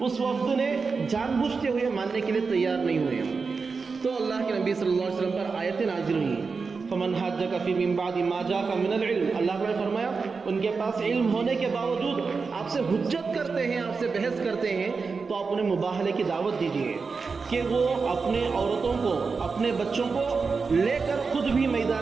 وفد نے جان بوجھتے ہوئے ماننے کے لیے تیار نہیں ہوئے۔ تو اللہ کے نبی صلی اللہ علیہ وسلم پر آیتیں نازل ہوئیں، فمن حاجک فی من بعد ما جاءک من العلم۔ اللہ نے فرمایا ان کے پاس علم ہونے کے باوجود آپ سے حجت کرتے ہیں، آپ سے بحث کرتے ہیں، تو آپ انہیں مباہلے کی دعوت دیجیے کہ وہ اپنے عورتوں کو، اپنے بچوں کو لے کر خود بھی میدان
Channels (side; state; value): left; quieter; 4.8 dB